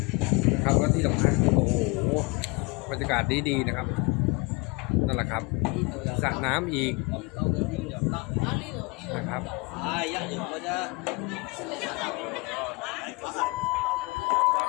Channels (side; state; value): right; quieter; 27.6 dB